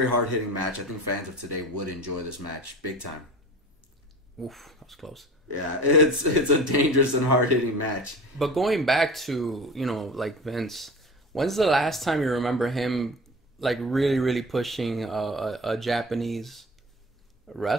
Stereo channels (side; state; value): both; normal; correlation 0.36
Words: hard hitting match. I think fans of today would enjoy this match big time. Oof, that was close. Yeah, it's a dangerous and hard hitting match. But going back to like Vince, when's the last time you remember him like really really pushing a Japanese